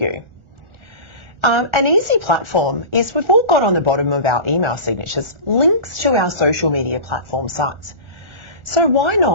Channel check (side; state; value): left; late; 1.4 ms